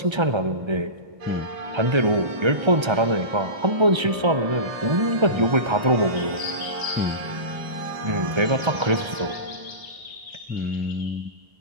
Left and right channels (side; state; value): left; late; 1.3 ms